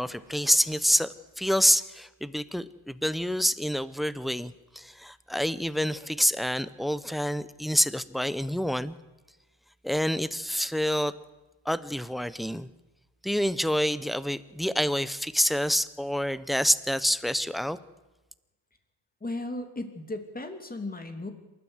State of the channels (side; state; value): both; normal; correlation 0.96